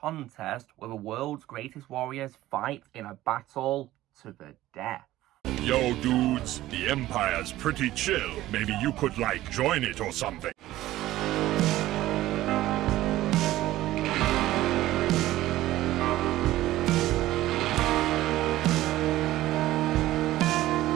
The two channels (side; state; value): left; quieter; 15.5 dB